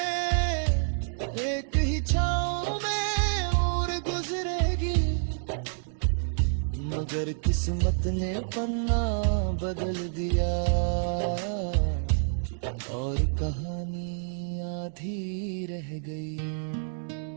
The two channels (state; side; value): silent; left; digital silence